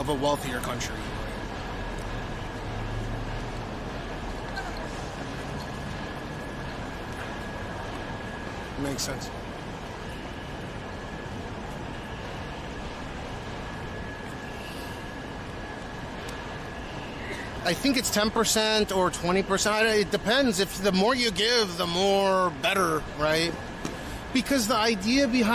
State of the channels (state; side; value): identical; both; correlation 1.00